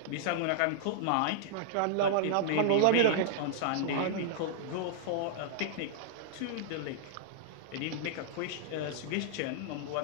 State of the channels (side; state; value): both; different; correlation -0.01